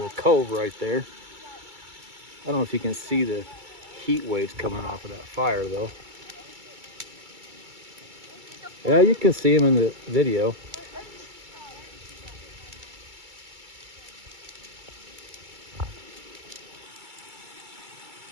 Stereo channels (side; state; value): left; late; 2.3 ms